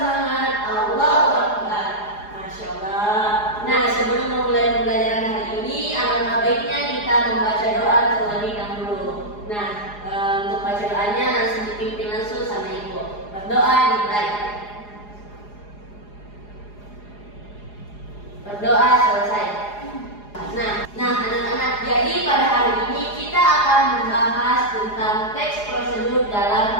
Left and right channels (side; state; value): right; late; 4.8 ms